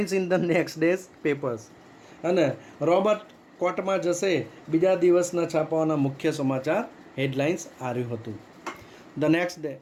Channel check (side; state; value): both; identical; correlation 1.00